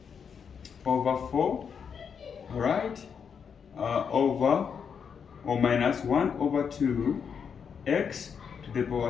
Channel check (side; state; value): right; quieter; 6.8 dB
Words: over 4, alright, over or minus 1 over 2 x to the